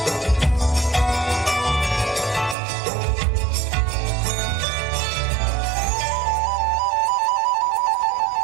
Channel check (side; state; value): left; drops out; at 2.6 s